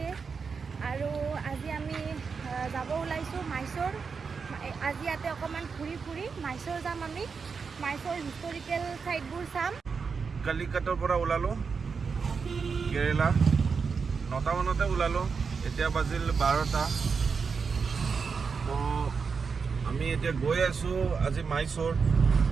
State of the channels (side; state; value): left; quieter; 5.4 dB